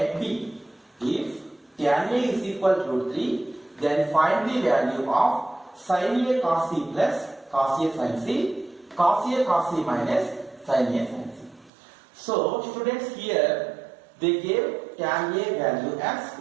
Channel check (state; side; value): drops out; left; at 11.7 s